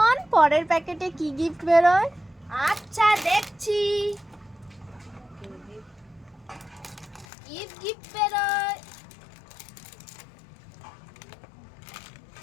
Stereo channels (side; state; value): right; drops out; at 7.2 s